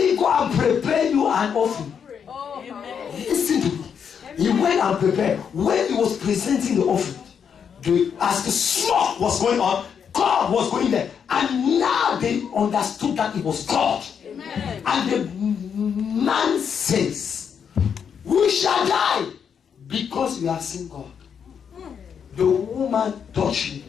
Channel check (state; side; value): quieter; right; 7.3 dB